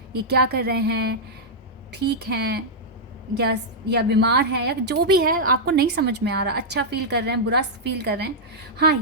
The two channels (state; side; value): normal; both; correlation -0.07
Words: ये क्या कर रहे हैं, ठीक हैं या बीमार हैं या जो भी है आपको नहीं समझ में आ रहा। अच्छा फील कर रहे हैं, बुरा फील कर रहे हैं। हाँ,